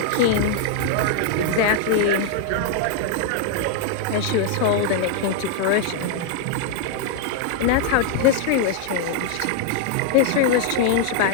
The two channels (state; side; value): different; both; correlation 0.00